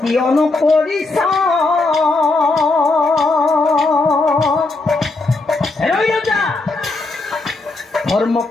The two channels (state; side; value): quieter; right; 3.3 dB